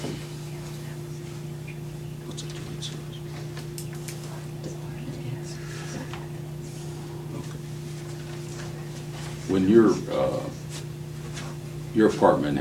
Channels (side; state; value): both; identical; correlation 1.00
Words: What's a joint service? When your apartment